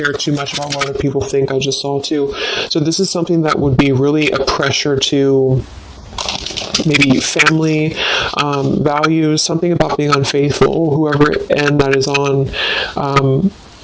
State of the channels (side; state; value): both; identical; correlation 1.00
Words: too much about what other people think. I just saw too. So this is something that would be really a pressure to maybe family, values, something about being unfaithful, whoever end that is on,